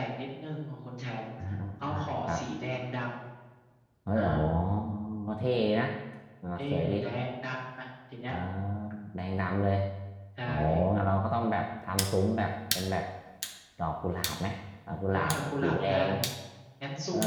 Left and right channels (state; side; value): identical; both; correlation 1.00